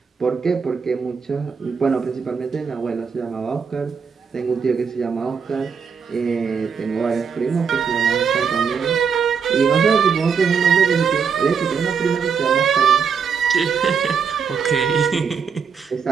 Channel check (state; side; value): quieter; left; 6.2 dB